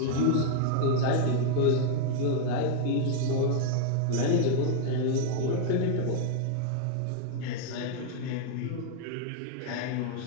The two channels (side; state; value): both; different; correlation 0.00